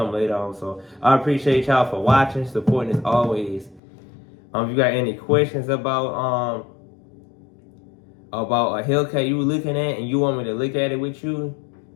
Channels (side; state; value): right; drops out; at 3.8 s